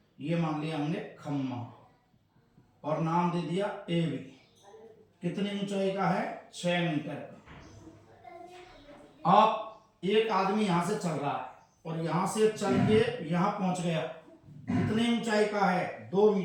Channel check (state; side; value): identical; both; correlation 1.00